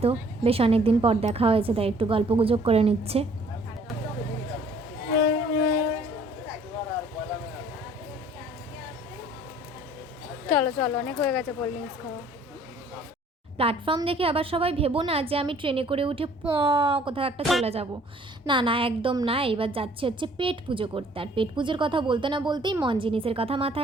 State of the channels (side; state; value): both; normal; correlation 0.56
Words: বেশ অনেক দিন পর দেখা হয়েছে, তাই একটু গল্প গুজব করে নিচ্ছে। চলো চলো, অনেক হয়ে গেছে কোল্ড ড্রিঙ্কস খাওয়া। প্ল্যাটফর্ম দেখে আবার সবাই ভেবো না যে আমি ট্রেনে করে উঠে কোথাও একটা চলে যাব। না না, একদম না। এবার যাচ্ছি হচ্ছে পেট পুজো করতে। আর পেট পুজোর কথা বলতে না বলতেই মন জিনিসের কথা